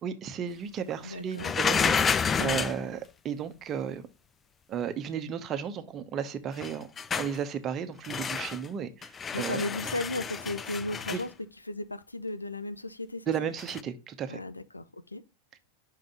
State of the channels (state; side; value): normal; both; correlation 0.40